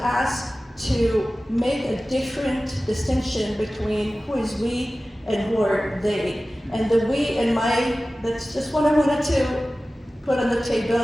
to make a different distinction between who is we and who are they. And the we and that's just what I wanted to put on the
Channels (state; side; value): normal; both; correlation 0.96